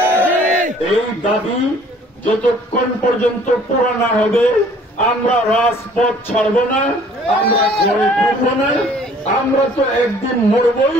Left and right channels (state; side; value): normal; both; correlation 0.55